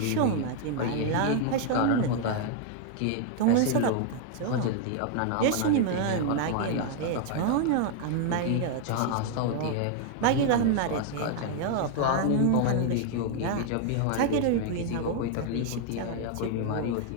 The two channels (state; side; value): different; both; correlation 0.00